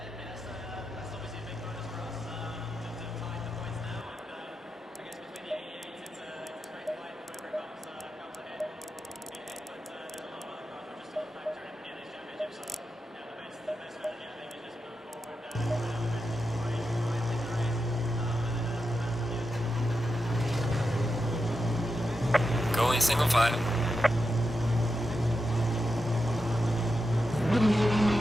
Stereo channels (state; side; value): normal; both; correlation 0.88